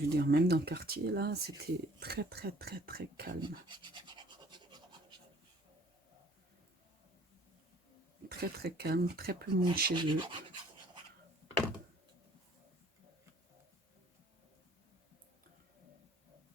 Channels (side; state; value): both; normal; correlation 0.56